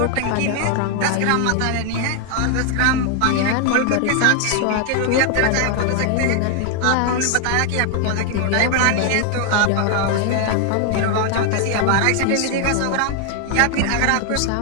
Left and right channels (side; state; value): both; different; correlation 0.00